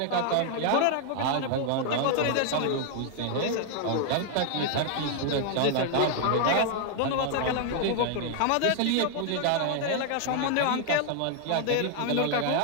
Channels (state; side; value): different; both; correlation 0.00